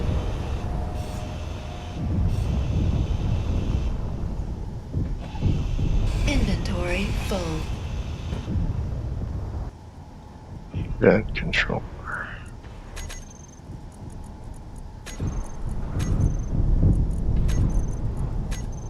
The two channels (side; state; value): both; identical; correlation 1.00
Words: Inventory full. vent controller.